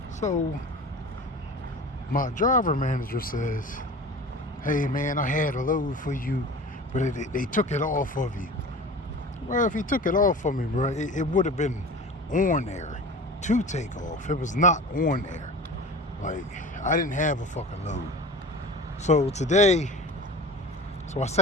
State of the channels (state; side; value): normal; both; correlation 0.36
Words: So my driver manager says, "Hey man, I had a load for you, but they took it off of you." Well, if he took it off of me, bro, it would have been on there to take off. It was not on there. Like, I didn't have a fucking load. So today, I